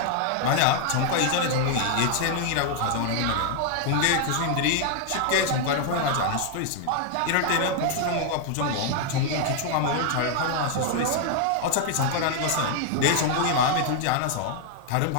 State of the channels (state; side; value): different; both; correlation 0.00